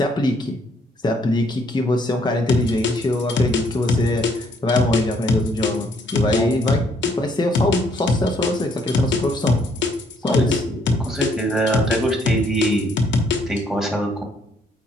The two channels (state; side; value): normal; both; correlation 0.67